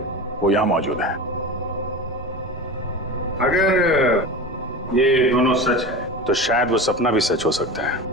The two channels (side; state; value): both; normal; correlation 0.28